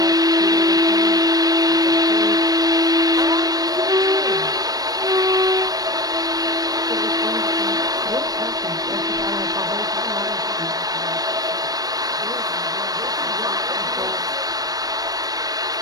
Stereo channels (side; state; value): left; late; 0.18 ms